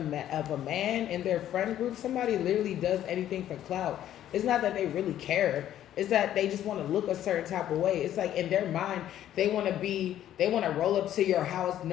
of a man in their friend group. Somebody literally does anything for clout. It's not that they really care. It's that they just want to look a certain type of way. It's like in their mind, they want to roll up to your house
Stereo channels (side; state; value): right; quieter; 11.7 dB